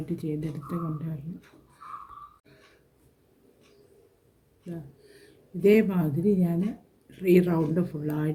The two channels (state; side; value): identical; both; correlation 1.00